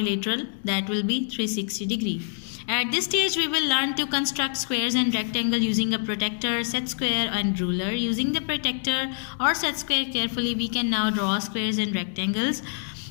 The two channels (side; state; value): right; silent; 61 dB below the other